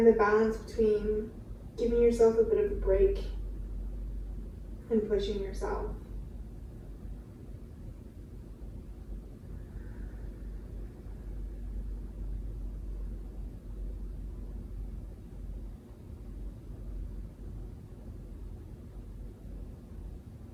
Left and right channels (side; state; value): both; identical; correlation 1.00